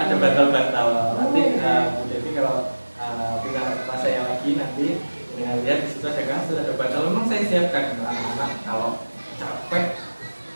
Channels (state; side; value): inverted; both; correlation -1.00